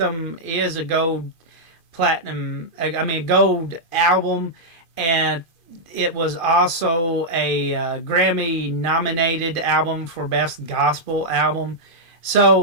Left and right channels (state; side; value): late; right; 2.5 ms